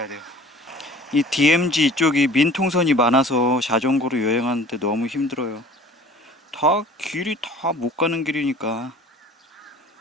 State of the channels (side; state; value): both; normal; correlation 0.47